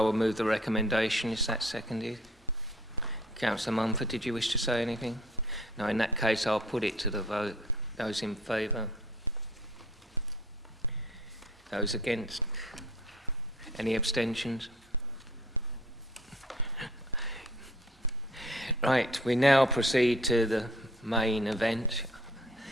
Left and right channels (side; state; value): both; normal; correlation 0.54